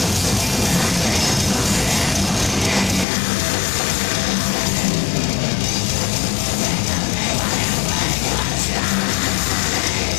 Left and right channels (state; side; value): drops out; right; at 3.1 s